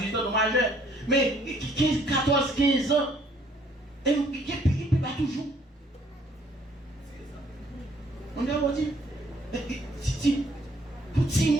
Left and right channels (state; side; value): normal; both; correlation 0.63